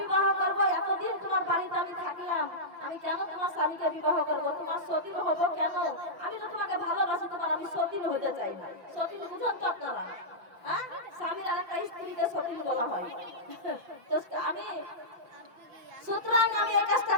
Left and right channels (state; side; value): late; left; 5.9 ms